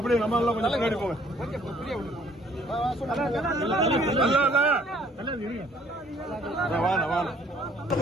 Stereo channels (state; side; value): normal; both; correlation 0.59